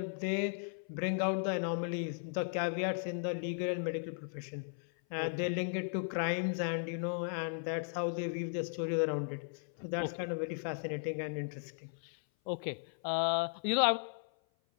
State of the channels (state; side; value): silent; right; 54 dB below the other